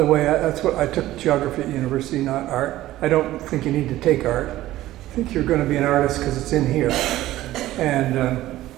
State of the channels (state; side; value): quieter; left; 15.3 dB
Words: way, that's what I took, geography at university, not art. I don't think you need to take art. I think you're going to be an artist because it's in here. And